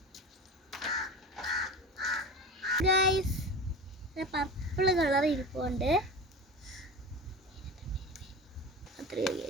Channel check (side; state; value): both; normal; correlation 0.31